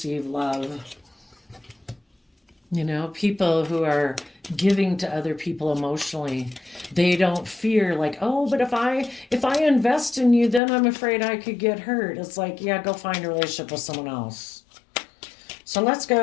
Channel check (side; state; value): right; drops out; at 10.6 s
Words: love. People who are giving to other people emotionally. They don't fear like, oh, but if I invest in you, then I'm afraid I could get hurt. It's like, yeah, go find a relationship with someone else. So let's